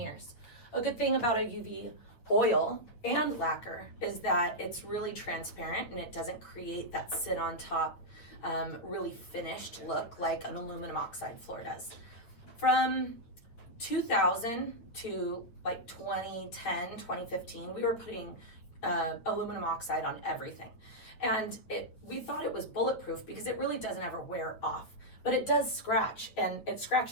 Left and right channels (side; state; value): right; late; 9.0 ms